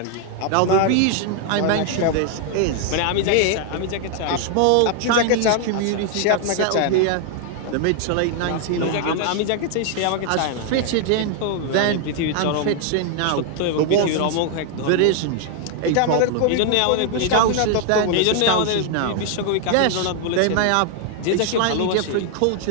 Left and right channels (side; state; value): both; different; correlation 0.00